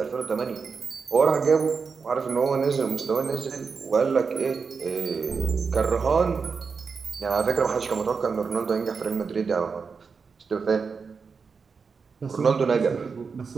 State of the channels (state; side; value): quieter; left; 5.3 dB